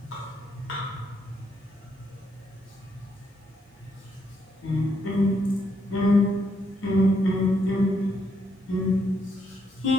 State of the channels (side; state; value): both; normal; correlation 0.75